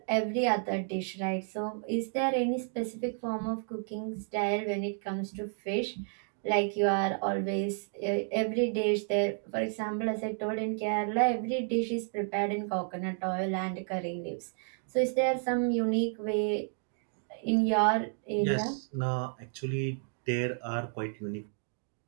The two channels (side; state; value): left; silent; 57 dB below the other